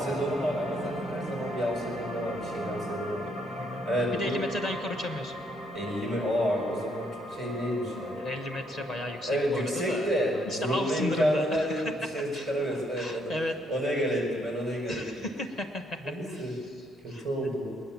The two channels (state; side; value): normal; both; correlation 0.71